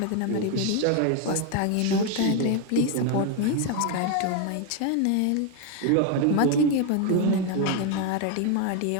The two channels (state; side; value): different; both; correlation 0.01